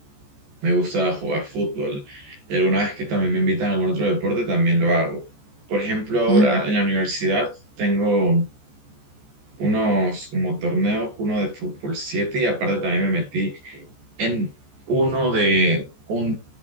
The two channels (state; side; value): late; left; 14 ms